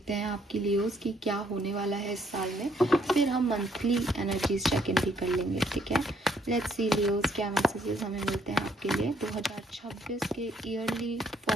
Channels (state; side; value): normal; both; correlation 0.68